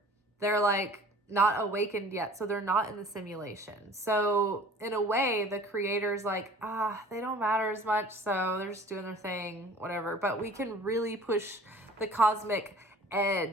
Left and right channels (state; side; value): normal; both; correlation 0.47